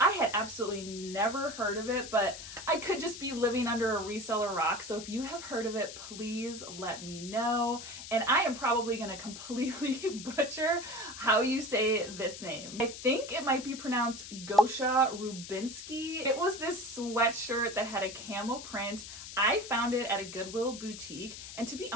I had absolutely never heard of it, but I could just be living under a reseller rock. So if you have heard of it, please let me know. And I am probably going to completely butcher how you say this name. I think it might be pronounced Gosha Rubinsky. It was this sweatshirt that had a camel print. I found it at a Goodwill boutique, and to be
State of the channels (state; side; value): noise; left; hiss, 11 dB below the sound